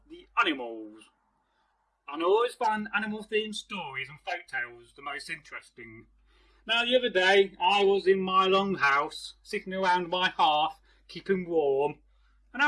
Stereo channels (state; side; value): identical; both; correlation 1.00